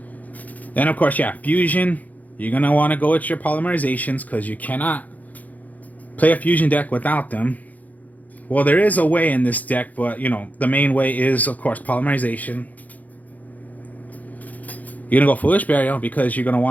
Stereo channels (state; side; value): late; right; 0.078 ms